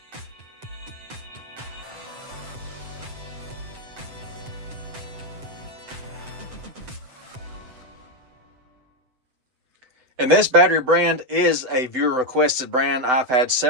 And this battery brand is a viewer requested brand. I've had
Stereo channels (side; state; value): left; late; 7.9 ms